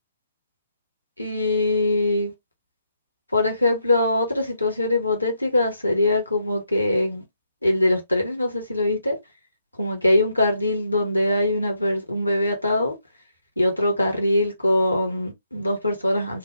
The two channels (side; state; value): both; inverted; correlation -0.79